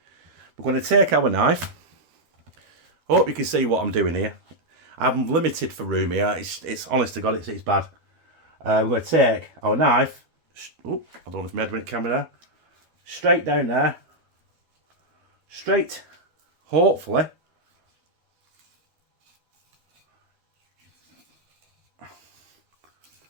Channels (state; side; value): late; left; 12 ms